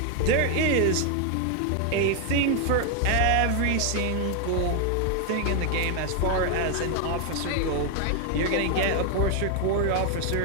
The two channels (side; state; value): both; different; correlation 0.01